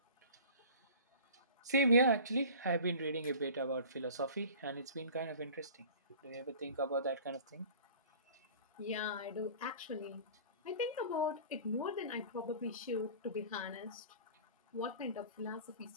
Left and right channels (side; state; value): both; inverted; correlation -0.42